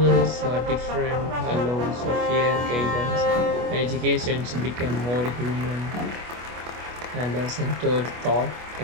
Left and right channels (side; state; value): left; late; 25 ms